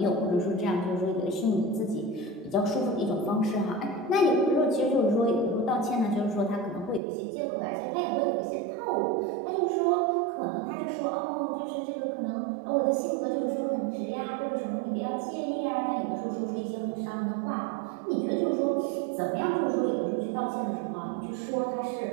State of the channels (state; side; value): drops out; left; at 7.0 s